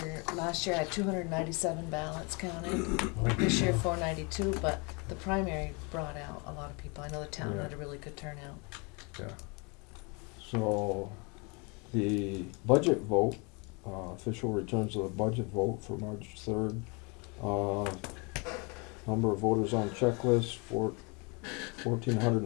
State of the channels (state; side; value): quieter; right; 31.1 dB